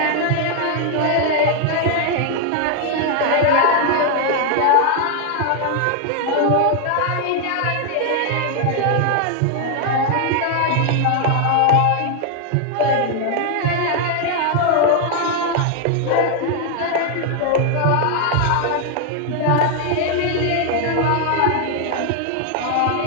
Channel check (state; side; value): different; both; correlation 0.00